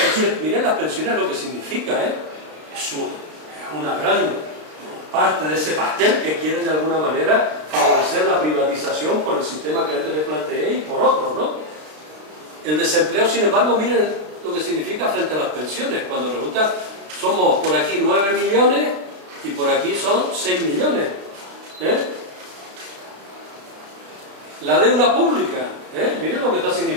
miren las pensiones, lo que significa, es una gran parte de ese pastel que quieren de alguna manera favorecer la privatización por el sistema que antes les planteé y por otros, ¿no? El desempleo, sin embargo, miren lo que significa frente a las pensiones, cuando resulta, somos por aquí 9 millones y por aquí son 6 millones. La deuda pública, miren lo que está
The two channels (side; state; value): left; late; 33 ms